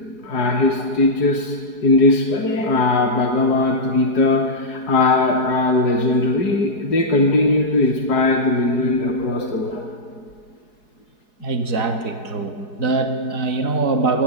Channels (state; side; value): late; right; 4.7 ms